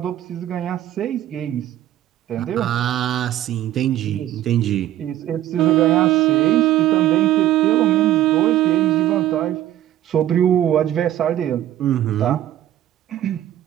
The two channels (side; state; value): left; quieter; 12.9 dB